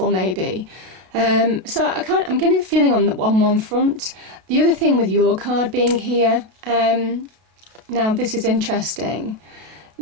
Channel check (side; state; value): left; late; 32 ms